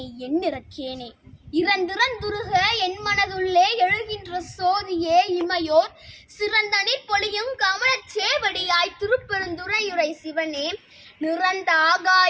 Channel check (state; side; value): identical; both; correlation 1.00